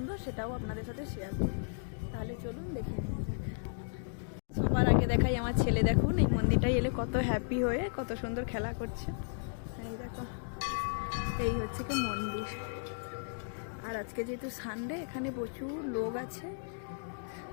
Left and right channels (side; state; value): right; silent; digital silence